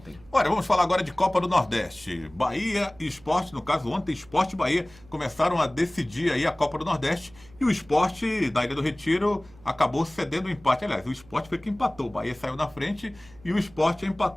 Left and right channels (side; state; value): right; noise; hum, 25 dB below the sound